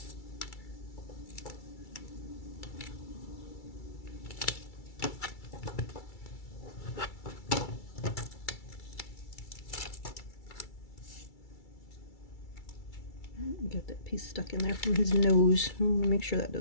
Get that piece stuck in there from his nose. I want to make sure that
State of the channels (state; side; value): late; right; 2.3 ms